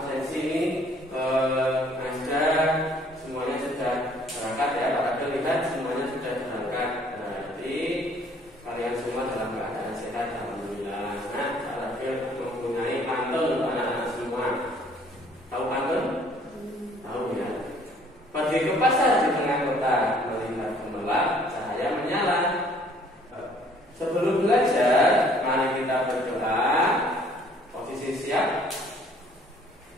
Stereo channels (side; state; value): both; normal; correlation 0.59